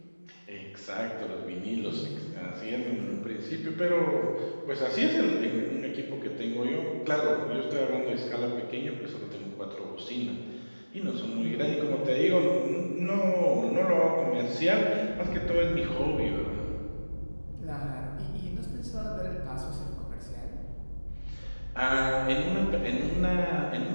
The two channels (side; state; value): both; inverted; correlation -1.00